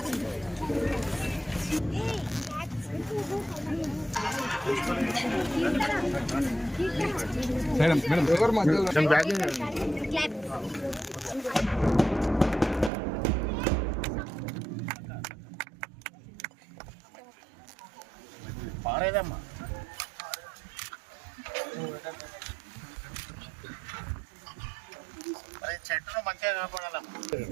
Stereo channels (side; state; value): left; drops out; at 12.9 s